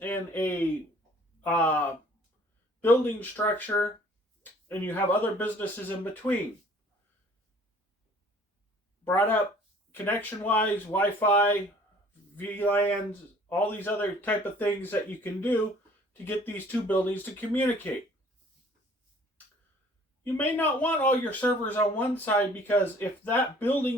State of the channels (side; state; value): both; normal; correlation 0.54